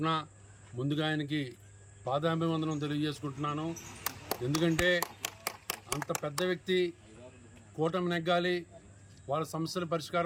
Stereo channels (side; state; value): both; identical; correlation 1.00